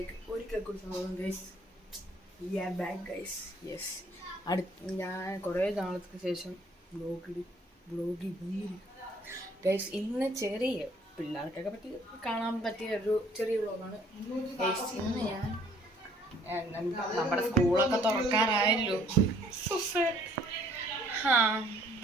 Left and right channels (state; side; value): normal; both; correlation 0.61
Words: ഒരിക്കൽ കൂടി സംഭവം ഗൈസ് ബാക്ക് ഗൈസ് യെസ് ഞാൻ കുറേ നാളത്തിന് ശേഷം വ്ളോഗിൽ ഗൈസ് ഇന്ന് ചെറിയ പിള്ളേർക്കൊക്കെ പറ്റി കാണാൻ പറ്റിയ ഒരു ചെറിയ വ്ളോഗാണ് ഗൈസ്. ഇന്ന് ഞാൻ നമ്മുടെ സ്കൂളൊക്കെ തുറക്കാറായല്ലോ.